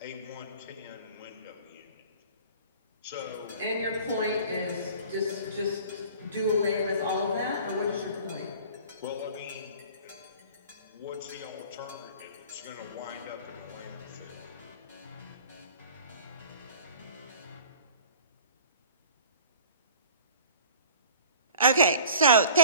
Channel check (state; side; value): inverted; both; correlation -0.45